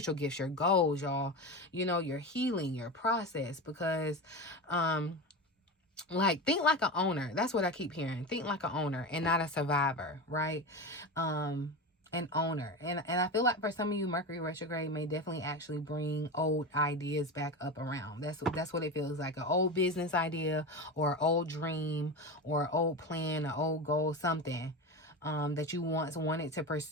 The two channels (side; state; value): both; normal; correlation 0.23